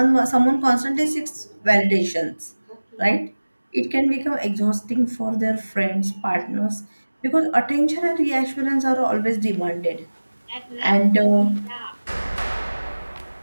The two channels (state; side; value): inverted; both; correlation -1.00